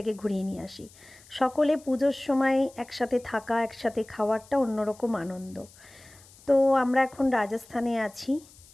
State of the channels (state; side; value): noise; left; hiss, 24 dB below the sound